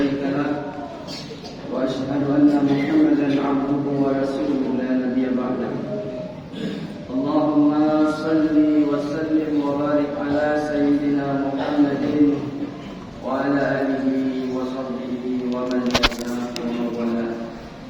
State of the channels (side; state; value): both; identical; correlation 1.00